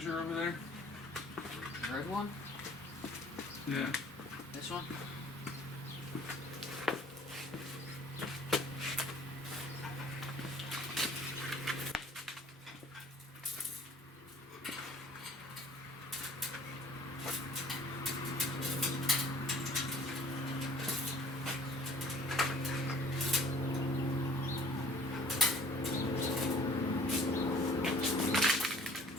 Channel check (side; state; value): both; normal; correlation 0.54